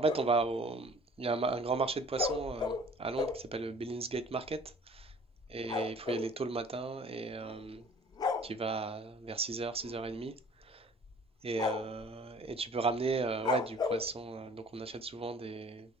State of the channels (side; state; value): both; normal; correlation 0.50